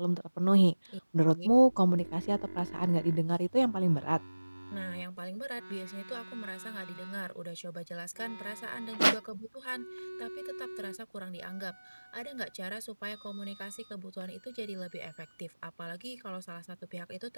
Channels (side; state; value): both; inverted; correlation -1.00